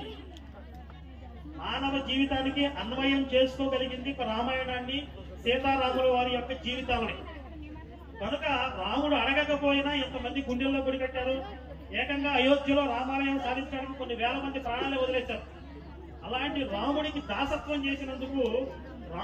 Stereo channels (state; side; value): identical; both; correlation 1.00